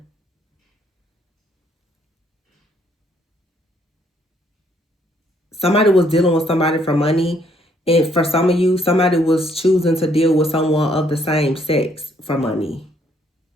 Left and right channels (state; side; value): normal; both; correlation 0.68